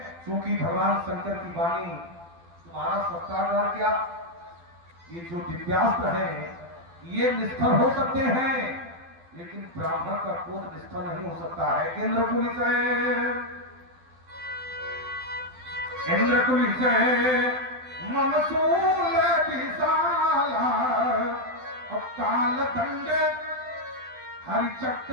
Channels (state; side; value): late; left; 12 ms